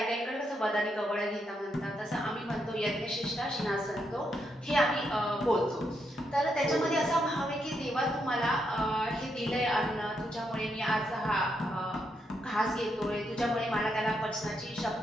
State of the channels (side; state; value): both; normal; correlation 0.80